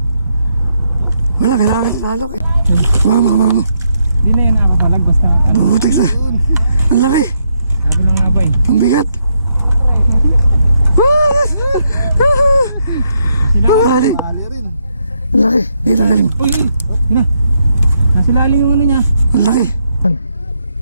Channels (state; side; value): inverted; both; correlation -0.78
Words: Wala, kailangan isalok eh. Mama. Hindi na yan nakapalag basta ano. Butik na. Ang laki. Sabi lang nga ba eh. Ang bigat. Sila Mali. Ali rin. Ang laki. Dito galing. Uy! Yun na. Nasa lalim yung ano niya. Ang laki.